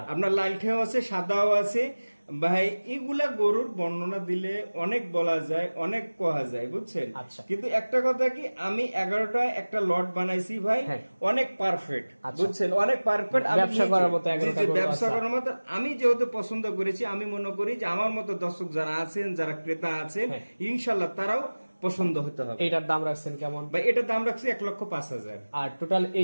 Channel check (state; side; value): inverted; both; correlation -1.00